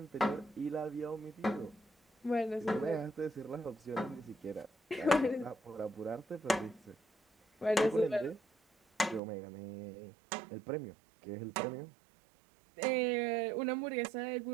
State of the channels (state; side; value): drops out; left; at 9.2 s